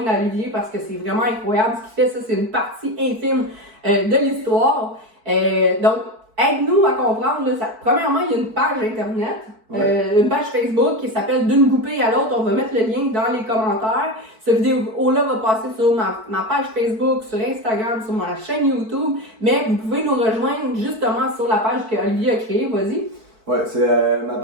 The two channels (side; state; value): left; late; 4.6 ms